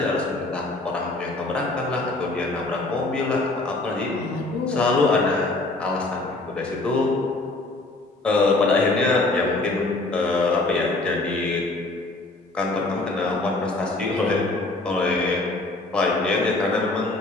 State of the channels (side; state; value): right; quieter; 3.0 dB